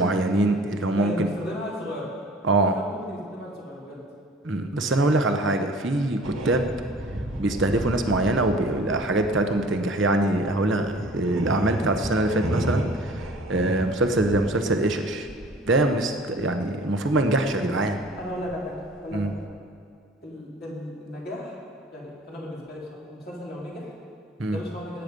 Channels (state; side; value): normal; both; correlation 0.47